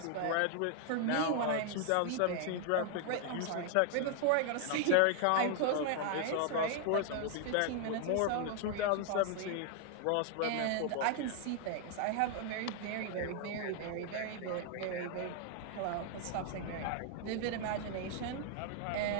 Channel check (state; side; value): different; both; correlation 0.00